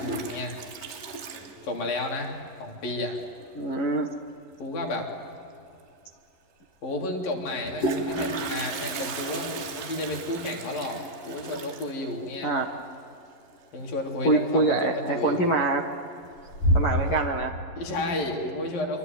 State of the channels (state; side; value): late; right; 11 ms